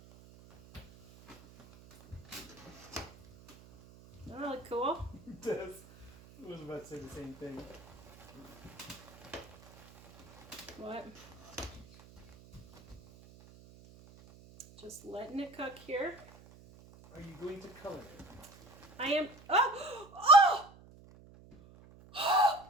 That really cool. It does. I was about to say the same thing. What? Just letting it cook here. Are you going to color it? I am. Oh! Oh!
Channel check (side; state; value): right; noise; hum, 22 dB below the sound